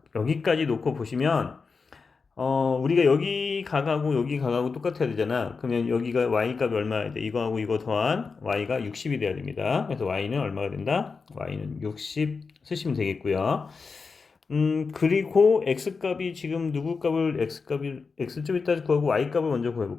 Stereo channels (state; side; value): quieter; right; 4.8 dB